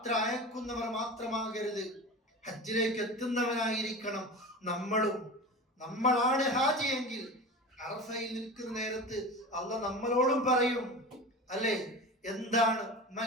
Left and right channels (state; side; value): normal; both; correlation 0.31